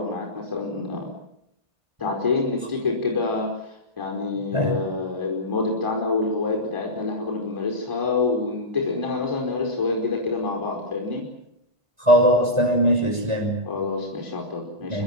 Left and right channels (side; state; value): left; late; 1.4 ms